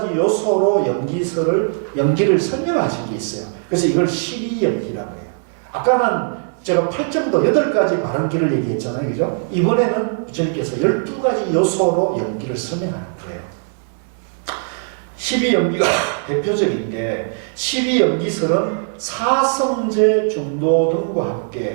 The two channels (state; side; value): silent; left; 65 dB below the other